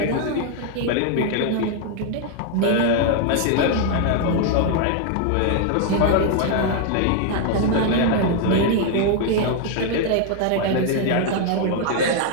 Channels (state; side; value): different; both; correlation 0.00